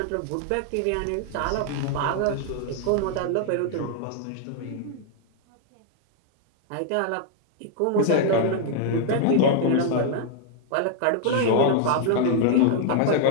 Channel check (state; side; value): different; both; correlation 0.00